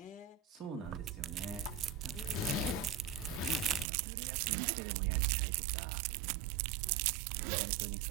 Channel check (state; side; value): drops out; left; at 3.9 s